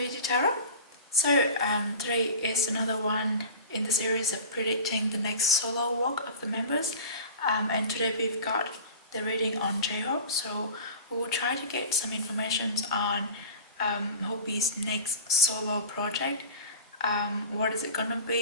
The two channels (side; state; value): both; inverted; correlation -0.36